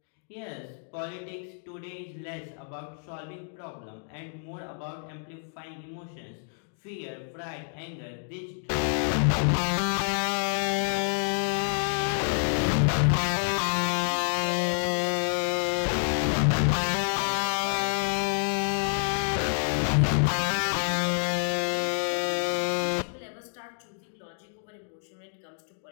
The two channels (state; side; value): silent; right; digital silence